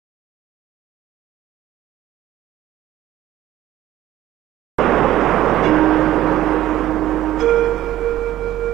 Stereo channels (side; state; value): left; quieter; 13.7 dB